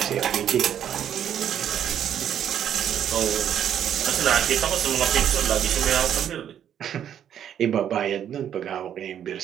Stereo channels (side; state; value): left; quieter; 9.7 dB